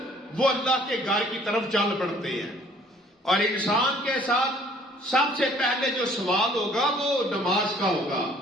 وہ اللہ کے گھر کی طرف چل پڑتے ہیں. اور انسان کے ساتھ سب سے پہلے جو سوال ہوگا وہ نماز کا ہوگا،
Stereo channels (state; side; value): normal; both; correlation 0.57